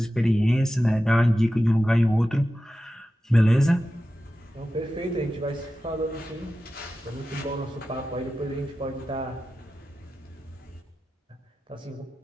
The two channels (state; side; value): normal; both; correlation 0.93